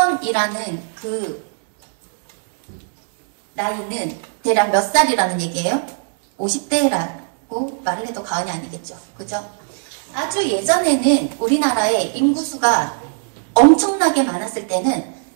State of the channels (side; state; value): left; silent; digital silence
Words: 그 나이는 대략 몇 살이라는 얘기예요? 50대라고 말을 해도 과언이 아니겠죠. 그죠? 아주 예전에는 우리나라의 인구수가 엄청나게 많았을 때는